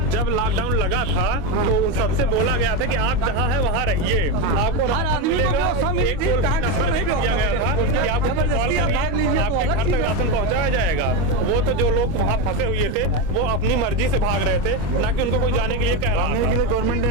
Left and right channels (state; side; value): late; left; 25 ms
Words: जब लॉकडाउन लगा था तो उन सबसे बोला गया था कि आप जहाँ है वहाँ रहिए, आपको हर आदमी को व्यवस्था मिली थी, कहाँ किसको नहीं दिया गया था कि आप जबरदस्ती आप भाग लीजिए तो आपके घर तक राशन पहुँचाया जाएगा। वो तो जो लोग वहाँ फंसे हुए थे वो अपनी मर्जी से भाग रहे थे, ना कि उनको कोई जाने के लिए कह रहा था। गवर्नमेंट ने